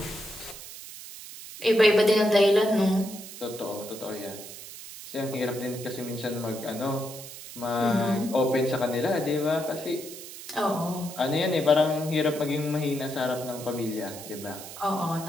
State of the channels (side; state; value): right; noise; hiss, 13 dB below the sound